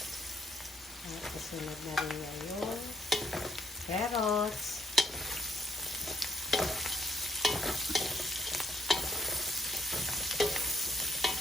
At kasunod na rin niya yung carrots.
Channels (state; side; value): normal; both; correlation 0.72